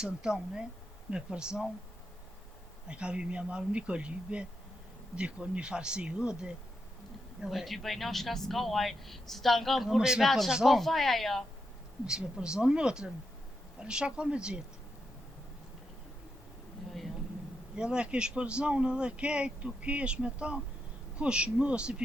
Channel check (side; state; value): both; normal; correlation 0.84